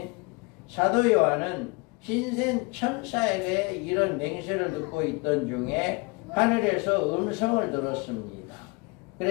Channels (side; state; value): right; quieter; 27.7 dB